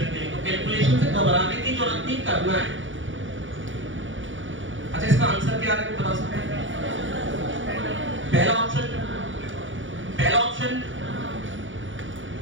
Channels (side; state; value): left; late; 0.56 ms